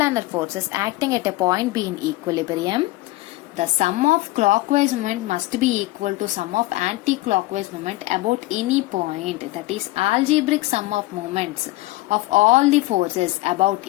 forces acting at a point be in equilibrium, the sum of clockwise moment must be equal to sum of anti-clockwise moment about any point. That is, algebraic sum of moments of all the forces about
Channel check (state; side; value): quieter; right; 19.3 dB